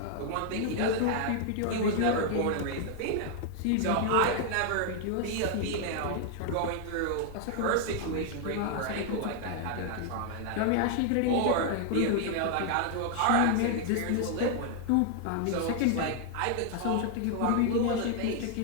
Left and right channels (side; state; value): both; different; correlation 0.00